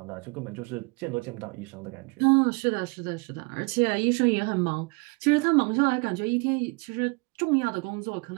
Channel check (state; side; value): quieter; left; 31.2 dB